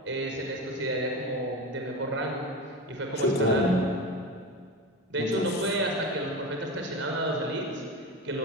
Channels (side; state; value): both; normal; correlation 0.25